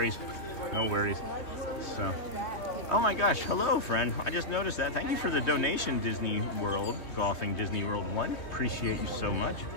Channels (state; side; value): late; right; 3.2 ms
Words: no worries. So, oh my gosh, hello, friend. I just noticed that. Thank you for the donation, Disney World, Golfing Disney World 1. Appreciate you so much.